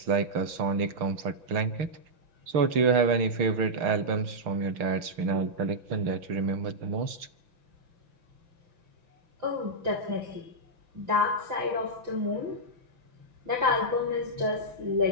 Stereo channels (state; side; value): late; left; 6.6 ms